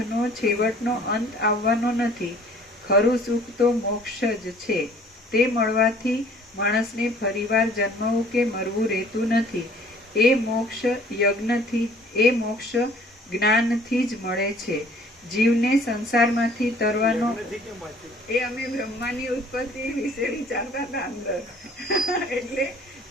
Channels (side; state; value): both; normal; correlation 0.54